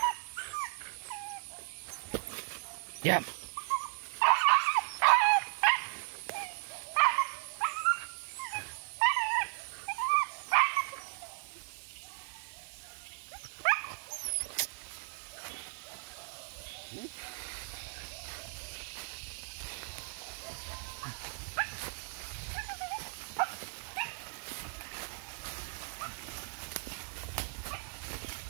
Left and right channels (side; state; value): left; silent; 54 dB below the other